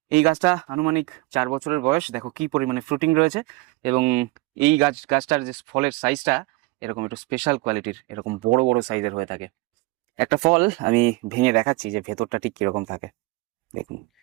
এই গাছটা আনুমানিক 4 বছরের বয়স। দেখো কি পরিমাণে ফ্রুটিং রয়েছে, এবং এই গাছটার যে ফলের সাইজটা এরকম একটু স্পেশাল কোয়ালিটির, এরকম বড় বড় সাইজের হয়ে থাকে। একটা ফল আমি ভেঙে দেখাচ্ছি যে ভেতরটা ঠিক কিরকম থাকে। দেখুন,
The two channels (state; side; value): quieter; left; 22.2 dB